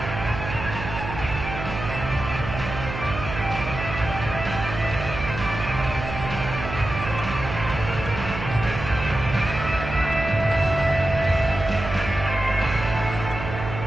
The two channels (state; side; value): noise; right; hum, 7 dB below the sound